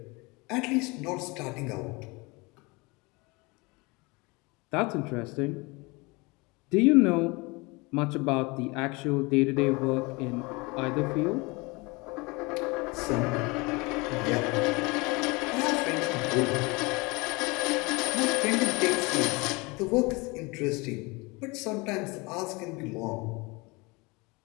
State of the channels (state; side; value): quieter; right; 26.1 dB